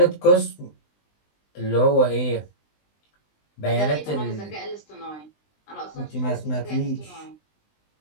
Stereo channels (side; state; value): right; late; 20 ms